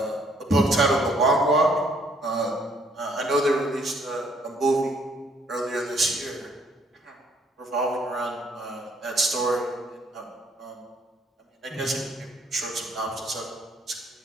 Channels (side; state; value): both; normal; correlation 0.65